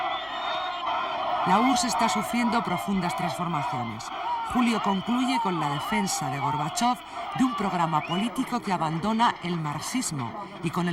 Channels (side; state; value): both; identical; correlation 1.00